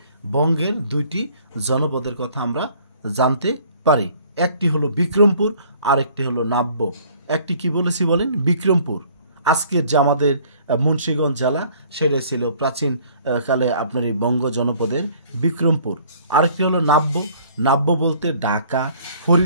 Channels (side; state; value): both; inverted; correlation -0.56